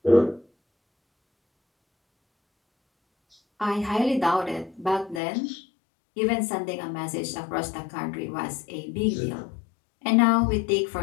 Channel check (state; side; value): drops out; right; at 5.2 s